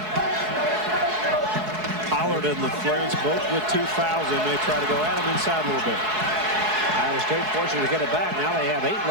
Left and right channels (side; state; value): left; late; 4.7 ms